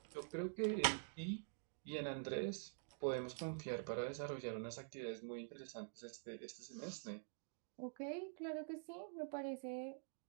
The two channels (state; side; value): silent; left; digital silence